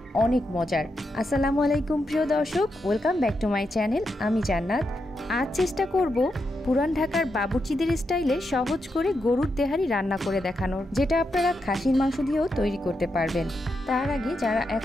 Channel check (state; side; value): normal; both; correlation 0.84